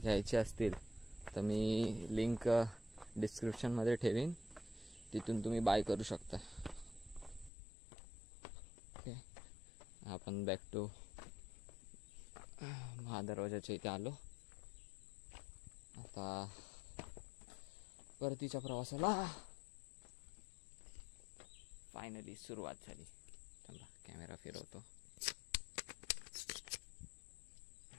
असतील तर मी लिंक डिस्क्रिप्शनमध्ये ठेवीन, तिथून तुम्ही बाय करू शकता. ओके, आपण बॅक टू महादरवाजाच्या इथे आलो. आता परतीच्या प्रवासाला फायनली सुरुवात झाली. चला कॅमेरा फिरवतो.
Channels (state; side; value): drops out; right; at 7.5 s